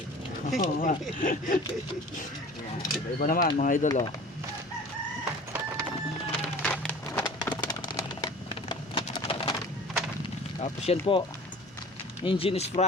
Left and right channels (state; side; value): normal; both; correlation 0.43